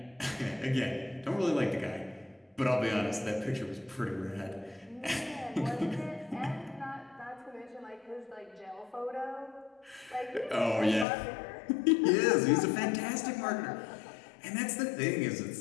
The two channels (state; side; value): drops out; right; at 11.1 s